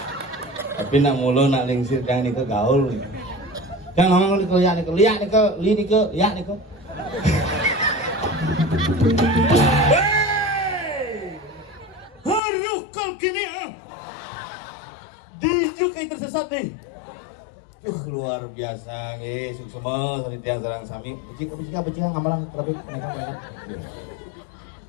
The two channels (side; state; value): right; drops out; at 12.4 s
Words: Tapi nak mulu nak lingsir jangan ni ke gaul. Jangan orang lihat ni ke li ni ke lihat ni ke. Hey, haru kau kini ah. Dijuk itu tersesat ni. Luar biasa nggih, semua salitian sareng sami. Becik ngamalang tapi kenapa.